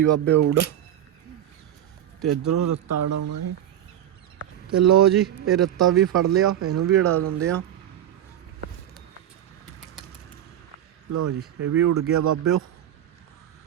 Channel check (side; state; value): left; quieter; 11.2 dB